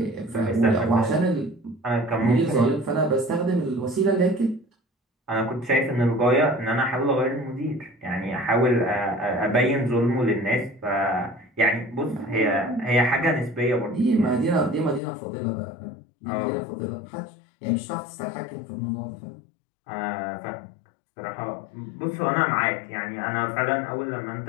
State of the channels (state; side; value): drops out; right; at 15.0 s